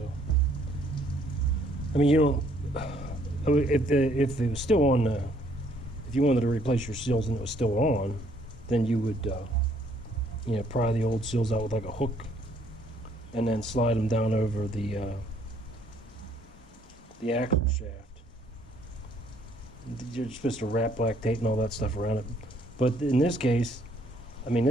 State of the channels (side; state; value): both; normal; correlation 0.65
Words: I mean, you don't. If it was still on, if you wanted to replace your seals and it was still on, then you would, you know, pry the old seals out with like a hook, and then slide them down over the axle shaft. You're supposed to wrap black tape and all that stuff around it, but in this case, I mean,